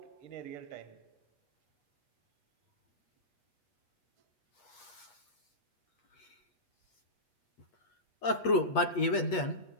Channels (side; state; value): right; late; 8.3 ms